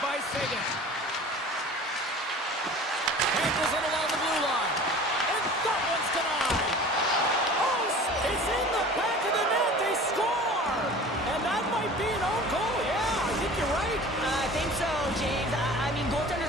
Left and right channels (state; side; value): normal; both; correlation 0.41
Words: by Sagan. Handles it along the blue line. And that one's denied. Oh, it's in the back of the net. They score. And that might be an own goal. Yeah, I think you're right. I think so, James. I mean,